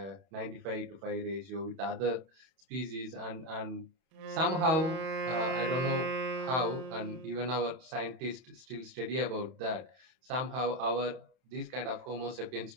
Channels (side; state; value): left; late; 31 ms